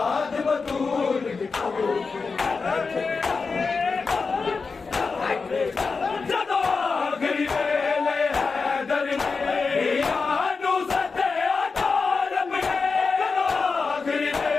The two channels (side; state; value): right; quieter; 4.6 dB